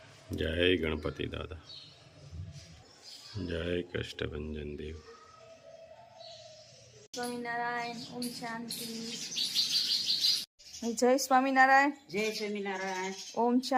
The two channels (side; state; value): both; identical; correlation 1.00